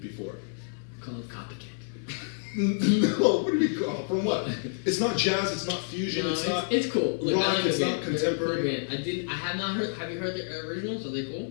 before. Call it copycat. No, what do we call? From what? It's not jazz. It's not fusion. No, it's not. it's cool. Look, rock. I like It's the not band. They're a cool contemporary. band. I have not heard. Have you heard their originals? Are they cool?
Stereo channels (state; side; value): silent; right; 59 dB below the other